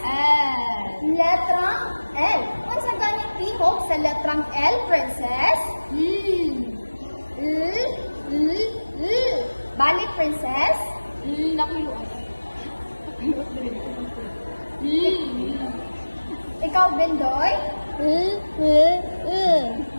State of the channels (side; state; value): both; inverted; correlation -1.00